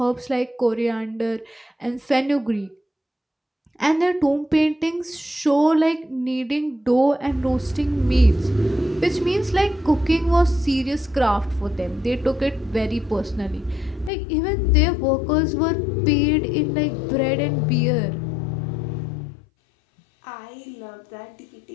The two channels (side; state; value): right; drops out; at 14.1 s